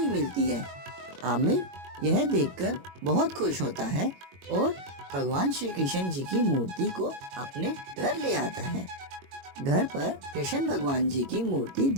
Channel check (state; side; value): late; left; 22 ms